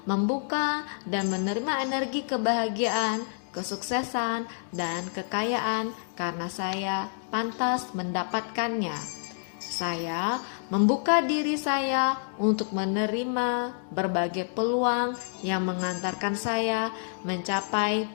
membuka dan menerima energi kebahagiaan, kesuksesan, dan kekayaan karena saya pantas mendapatkannya. Saya membuka diri saya untuk menerima berbagai peluang yang mengantarkan saya mencapai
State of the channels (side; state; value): right; silent; digital silence